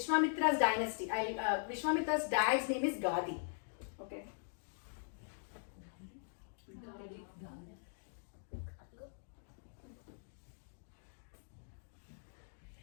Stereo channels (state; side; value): silent; right; digital silence